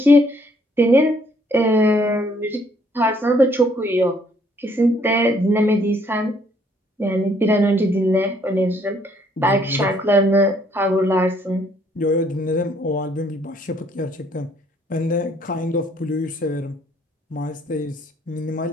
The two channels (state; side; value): normal; both; correlation 0.65